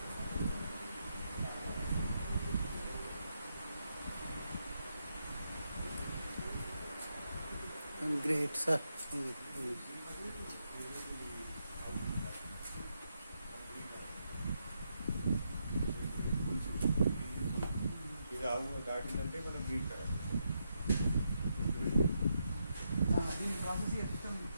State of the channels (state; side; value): inverted; both; correlation -0.82